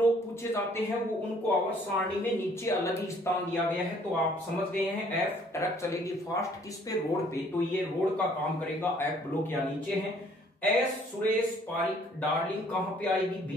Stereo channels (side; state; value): both; normal; correlation 0.60